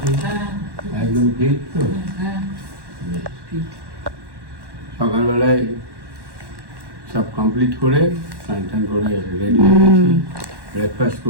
একদম ঠিক তো। সকালবেলায় সব কমপ্লিট করে স্নান টান করে রেডি হয়ে গেছি। ব্রেকফাস্ট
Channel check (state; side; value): late; left; 1.1 ms